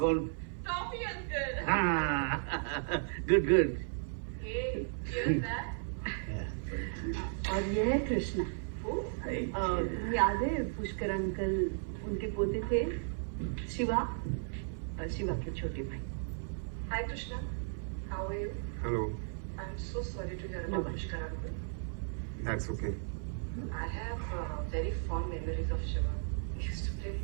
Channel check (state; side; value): silent; left; 54 dB below the other